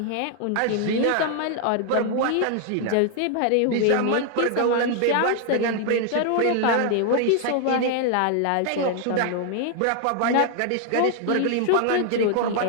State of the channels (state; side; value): different; both; correlation 0.00